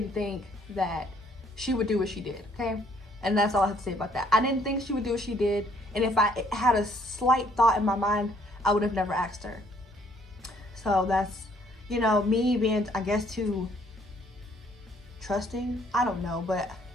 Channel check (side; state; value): both; normal; correlation 0.64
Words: think that she would do what she did, okay? And that's all I have to say about that. I didn't think she would do what she did, and if I had a slight thought in my mind, I would have never asked her. So that's, you know, me being, I guess, too trusting. I don't know, but